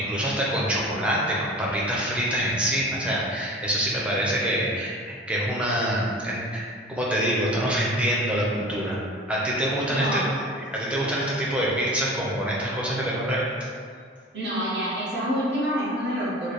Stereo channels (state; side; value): normal; both; correlation 0.39